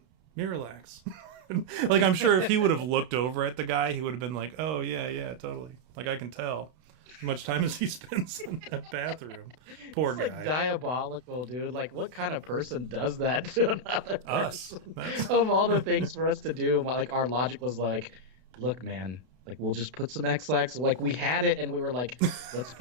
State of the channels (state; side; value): late; left; 32 ms